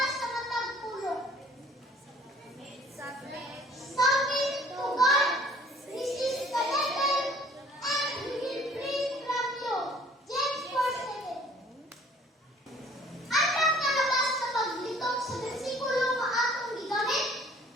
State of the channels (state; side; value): normal; both; correlation 0.55